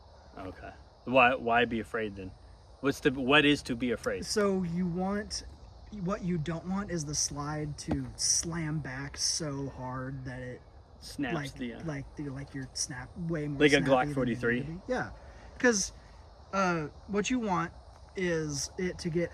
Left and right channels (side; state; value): both; identical; correlation 1.00